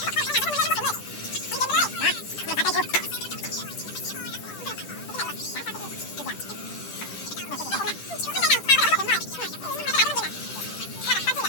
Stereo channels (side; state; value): right; late; 10 ms